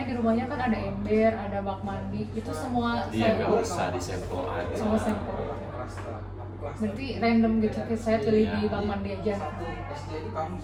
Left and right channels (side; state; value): both; identical; correlation 1.00